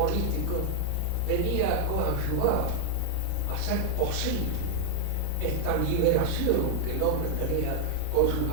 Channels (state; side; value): different; both; correlation 0.00